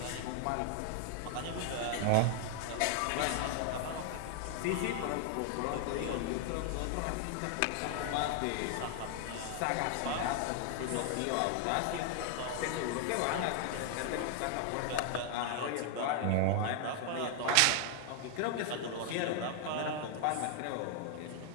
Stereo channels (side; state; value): both; different; correlation 0.00